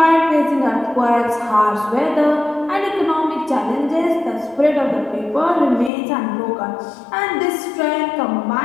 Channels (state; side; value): drops out; right; at 5.9 s